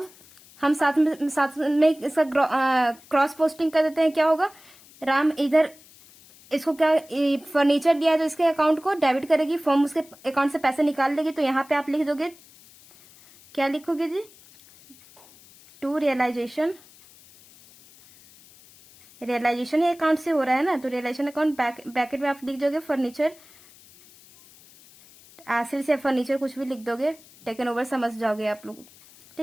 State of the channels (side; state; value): left; noise; hiss, 24 dB below the sound